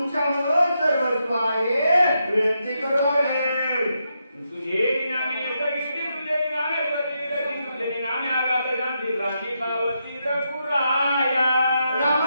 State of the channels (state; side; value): inverted; both; correlation -0.83